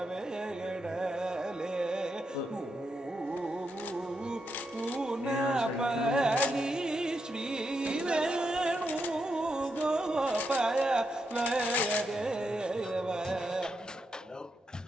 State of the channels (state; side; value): normal; both; correlation 0.83